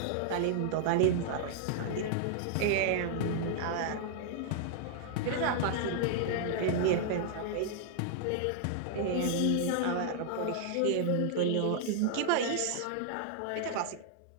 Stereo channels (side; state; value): both; different; correlation -0.01